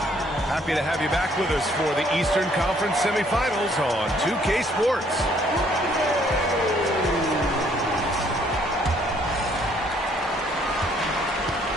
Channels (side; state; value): both; normal; correlation 0.64